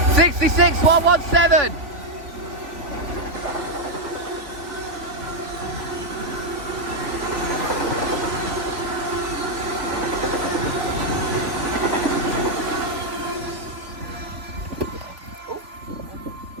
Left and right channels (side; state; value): left; late; 3.5 ms